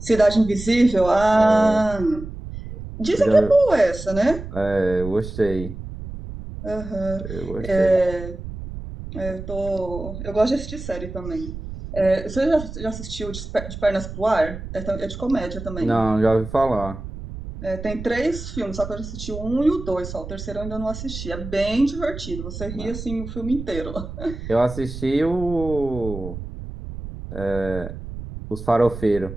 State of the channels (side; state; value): right; noise; rumble, 10 dB below the sound